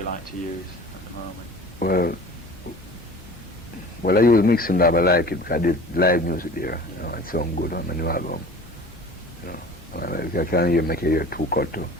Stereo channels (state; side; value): normal; both; correlation 0.42